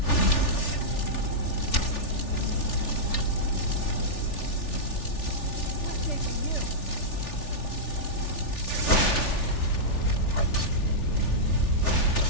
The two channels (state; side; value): late; right; 3.4 ms